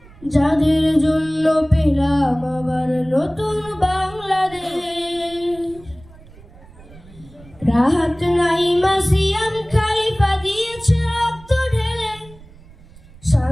যাদের জন্য পেলাম আবার নতুন বাংলাদেশ। রাহাত নাইমা সিয়াম খলিফা দিয়েছে রক্ত ঢেলে,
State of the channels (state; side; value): noise; right; rumble, 22 dB below the sound